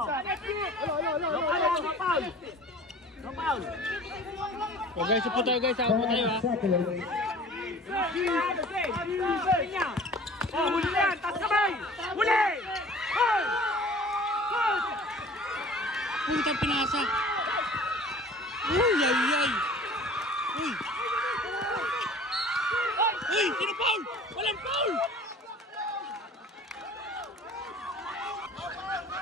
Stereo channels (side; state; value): both; normal; correlation 0.45